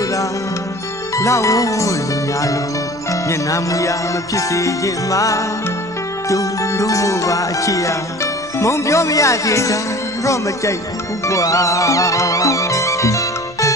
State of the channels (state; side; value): normal; both; correlation 0.43